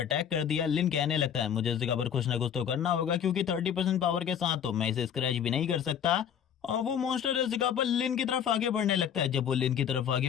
कर दिया। लिन कहने लगता है मुझे इस जगह पर कुछ ना कुछ तो करना होगा क्योंकि 30% पावर के साथ तो मैं इसे स्क्रैच भी नहीं कर सकता। और वो मॉन्स्टर इस जगह पर लिन की तरफ आगे बढ़ने लगता है। जब वो लिन की तरफ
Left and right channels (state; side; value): quieter; right; 8.6 dB